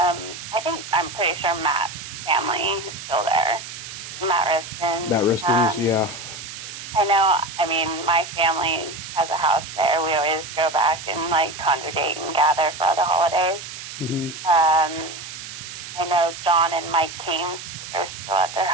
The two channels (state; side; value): noise; right; hiss, 11 dB below the sound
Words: I'm pretty sure Matt's family is still there. Matt Matt Riston. Riston's, yeah. I know. I mean, my family has a house there. We always go back and congregate and gather for the holidays. Hmm. I know John and Mike came. They're still at their